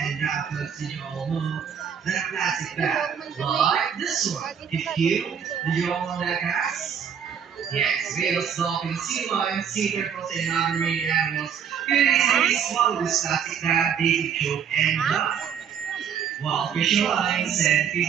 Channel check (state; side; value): quieter; left; 7.8 dB